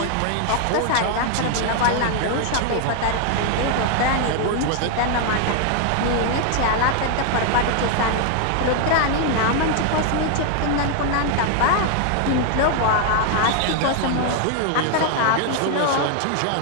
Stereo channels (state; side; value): different; both; correlation 0.00